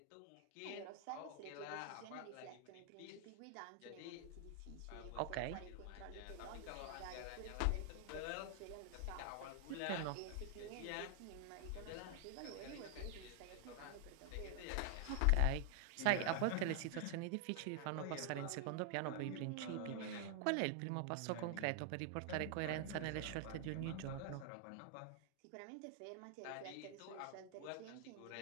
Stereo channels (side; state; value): both; different; correlation 0.00